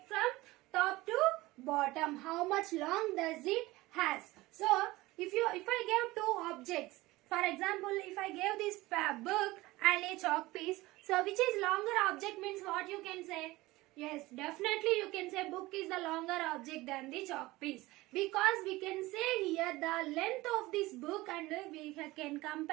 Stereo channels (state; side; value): quieter; left; 19.7 dB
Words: from top to bottom. How much long does it has? So if I gave two objects, for example, if I gave this book and a chalk piece, so which is longer object means what you can say? Yes, definitely you can say book is the longer object than the chalk piece, because we can say here the length of this book and we can